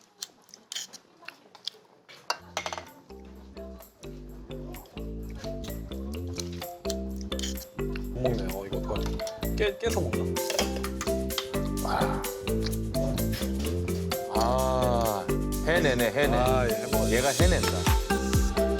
못 먹네요. 이거 어떡하지? 깨서 먹나? 해내네, 해내. 아, 예, 해먹어야지. 얘가 해낸다.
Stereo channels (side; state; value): both; identical; correlation 1.00